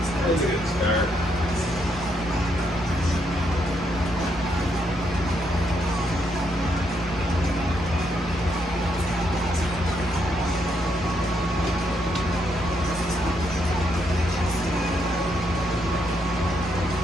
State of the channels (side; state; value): both; normal; correlation 0.76